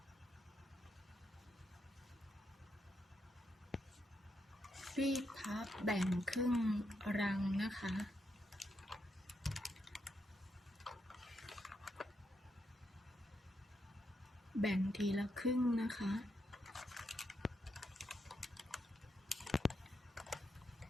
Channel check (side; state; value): both; normal; correlation 0.81